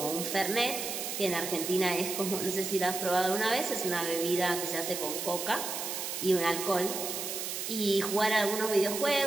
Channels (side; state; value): right; noise; hiss, 4 dB below the sound